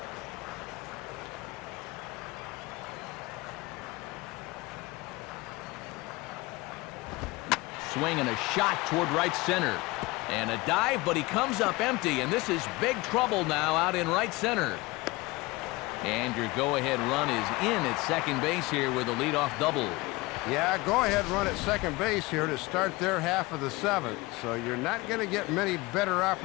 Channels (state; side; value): quieter; right; 22.3 dB